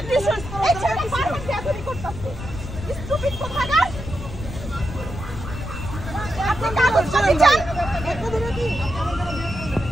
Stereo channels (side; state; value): left; noise; rumble, 9 dB below the sound